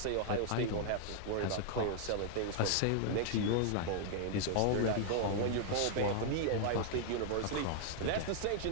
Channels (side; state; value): both; different; correlation 0.00